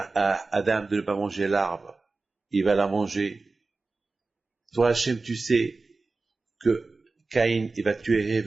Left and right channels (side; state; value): left; quieter; 3.7 dB